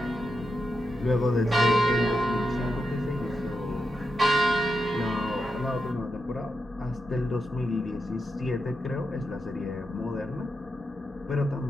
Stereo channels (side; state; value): both; normal; correlation 0.86